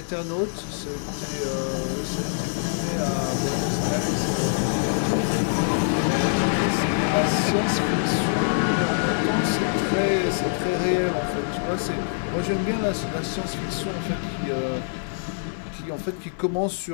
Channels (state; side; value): silent; right; digital silence